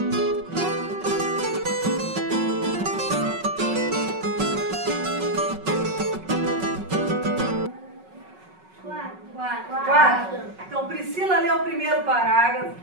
Então, Priscila leu o primeiro parágrafo,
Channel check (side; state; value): left; late; 5.4 ms